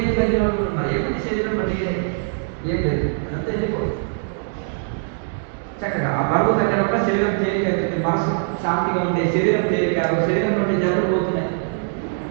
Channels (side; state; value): left; silent; digital silence